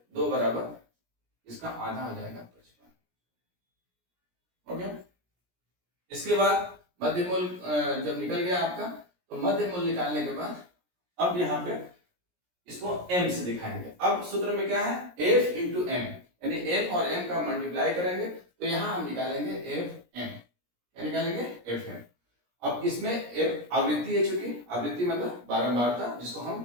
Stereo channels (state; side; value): late; left; 17 ms